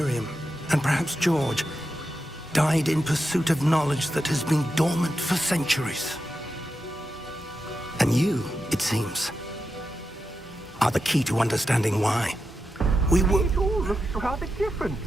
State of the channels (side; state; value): both; normal; correlation 0.88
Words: and perhaps George, died in pursuit of knowledge that has been dormant for centuries. And you, it seems, are the key to understanding why. We were... It all looks rather different